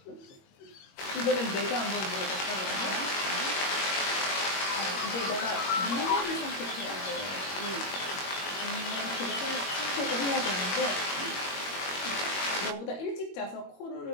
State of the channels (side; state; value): right; late; 21 ms